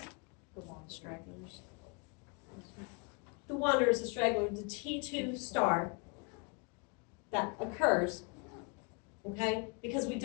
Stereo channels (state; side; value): quieter; right; 33.1 dB